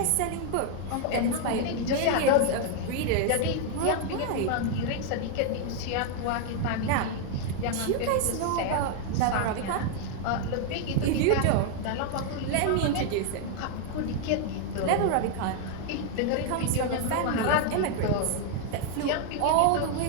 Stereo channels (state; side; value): different; both; correlation 0.00